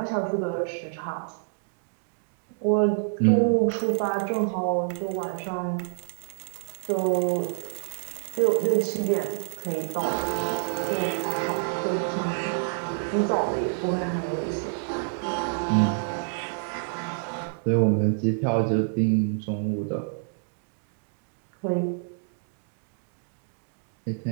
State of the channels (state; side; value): silent; left; digital silence